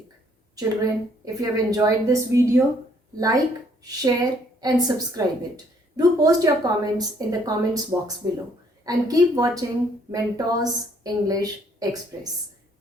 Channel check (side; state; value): both; normal; correlation 0.65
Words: Children, if you have enjoyed this video, like, share and subscribe it. Do post your comments in the comments box below and keep watching Mentors English Express.